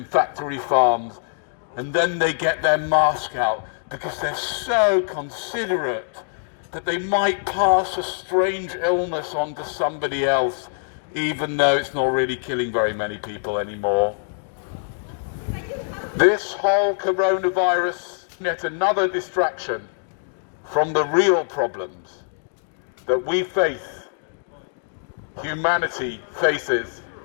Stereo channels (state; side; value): silent; right; digital silence